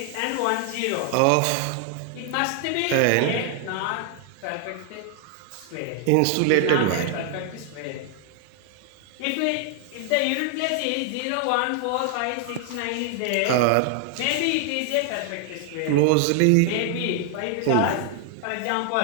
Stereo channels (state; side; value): different; both; correlation 0.00